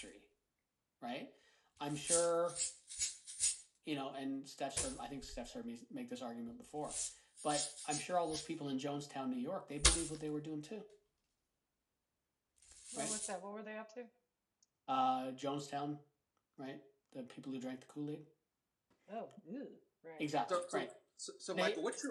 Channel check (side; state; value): both; identical; correlation 1.00